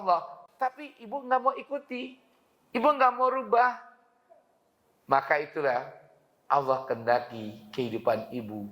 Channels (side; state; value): both; identical; correlation 1.00